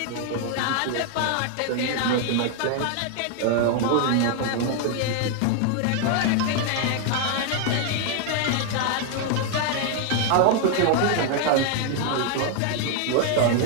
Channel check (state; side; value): different; both; correlation 0.00